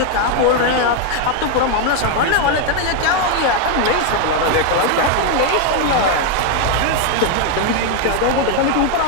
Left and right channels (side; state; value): both; different; correlation 0.01